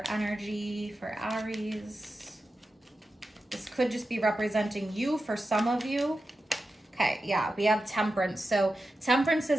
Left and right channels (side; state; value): both; normal; correlation 0.91